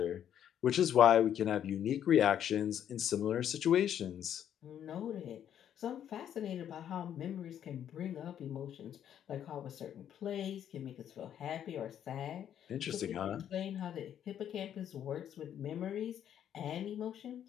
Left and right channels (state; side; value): quieter; right; 9.9 dB